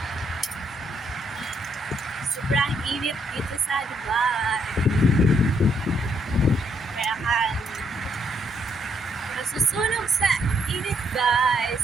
Sobrang init dito sa Dubai. Kaya kan nasusunog sa init, guys.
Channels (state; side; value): normal; both; correlation 0.72